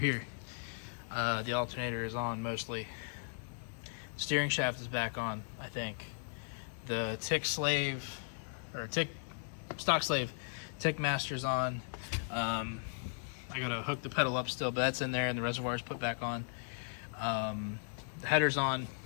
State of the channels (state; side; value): silent; right; 53 dB below the other